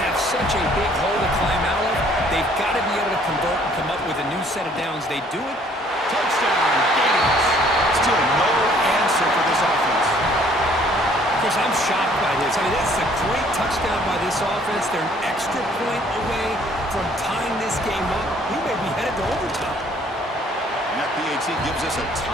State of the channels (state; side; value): normal; both; correlation 0.60